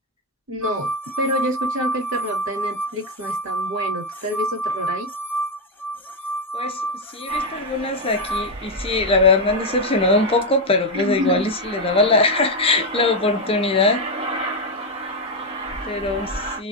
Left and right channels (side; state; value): both; normal; correlation 0.05